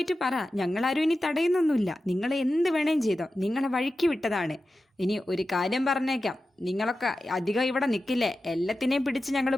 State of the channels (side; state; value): both; normal; correlation 0.93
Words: പറ. ഞങ്ങളാരും ഇനി തടയുന്നൊന്നുമില്ല. നിങ്ങൾ എന്ത് വേണേലും ചെയ്തോ, നിങ്ങളെ വഴിക്ക് വിട്ടതാണ്. ഇനി ഒരു കാര്യം പറഞ്ഞേക്കാം, നിങ്ങളൊക്കെ അധികം ഇവിടെ നിൽക്കില്ലേ, എല്ലാത്തിനെയും പിടിച്ച് ഞങ്ങൾ